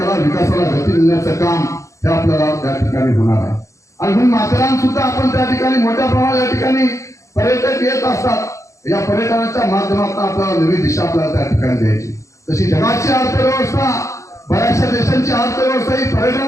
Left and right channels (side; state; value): right; late; 0.15 ms